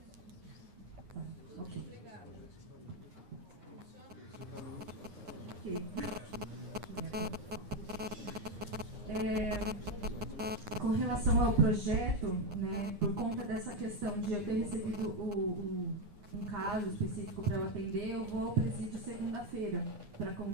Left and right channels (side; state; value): left; late; 9.7 ms